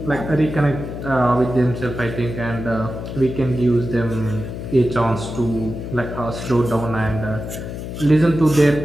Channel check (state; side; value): noise; left; hum, 8 dB below the sound